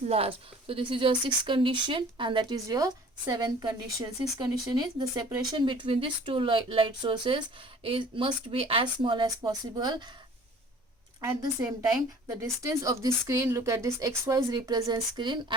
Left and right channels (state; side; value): normal; both; correlation 0.49